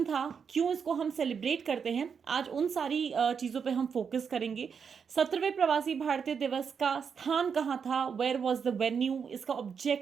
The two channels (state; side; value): quieter; left; 6.5 dB